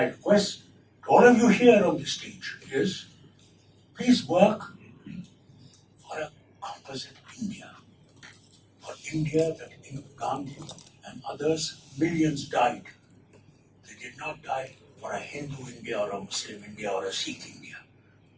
request to all of you here on this stage is, please work for a composite India. For India that Gandhi and others, millions died. They did not die for a Hindu India or a Muslim India or a Sikh India.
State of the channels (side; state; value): both; identical; correlation 1.00